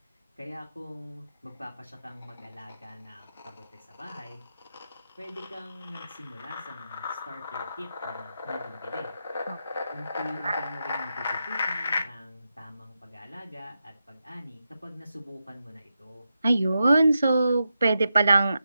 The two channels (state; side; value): inverted; both; correlation -0.88